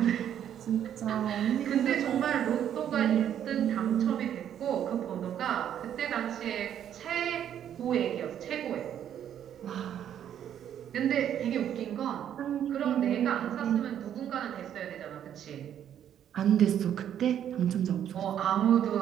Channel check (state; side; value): quieter; left; 9.9 dB